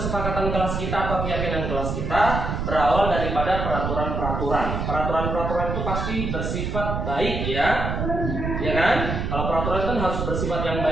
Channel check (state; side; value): noise; right; rumble, 2 dB below the sound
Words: kelas kita atau keyakinan kelas kita berawal daripada peraturan-peraturan. Peraturan-peraturan itu pasti bersifat baik ya, ya kan? Kalau peraturan kan harus bersifat yang